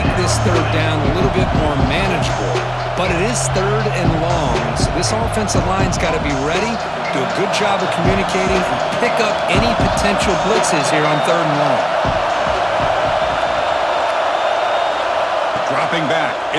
this 3rd down a little bit more manageable. But it is 3rd and long, so this offensive line's got to be ready, do a good job of communicating, and pick up any potential blitzes here on 3rd and long. Dropping back,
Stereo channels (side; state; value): both; identical; correlation 1.00